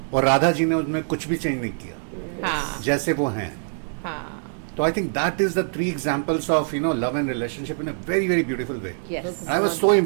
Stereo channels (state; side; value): silent; left; digital silence